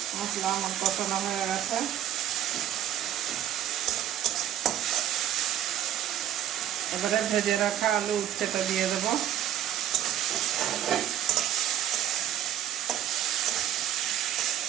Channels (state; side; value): quieter; left; 11.5 dB